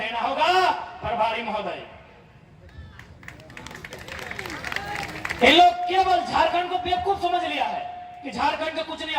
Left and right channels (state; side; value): identical; both; correlation 1.00